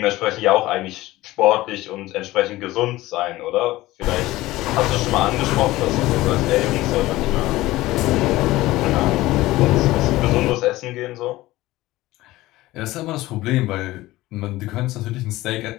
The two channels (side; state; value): right; quieter; 17.7 dB